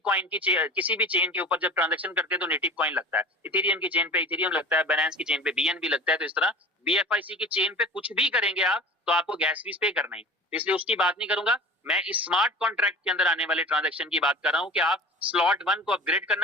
कॉइन की किसी भी चेन के ऊपर जब ट्रांजैक्शन करते हैं तो नेटिव कॉइन लगता है, इथेरियम की चेन पे इथेरियम लगता है, बाइनेंस की चेन पे बीएनबी लगता है। तो इस तरह बीएफआईसी की चेन पे कुछ भी करेंगे आप तो आपको गैस फीस पे करना है, इसलिए उसकी बात नहीं करूंगा। मैं इस स्मार्ट कॉन्ट्रैक्ट के अंदर आने वाले ट्रांजैक्शन की बात कर रहा हूं कि आप स्लॉट 1 को अपग्रेड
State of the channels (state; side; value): normal; both; correlation 0.37